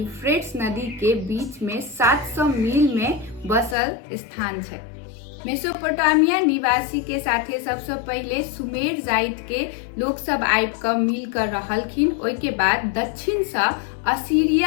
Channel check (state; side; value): drops out; right; at 3.8 s